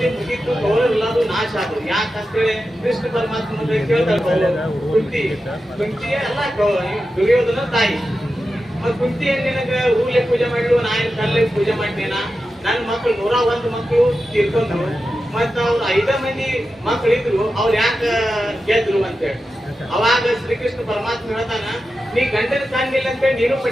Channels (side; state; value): both; normal; correlation 0.91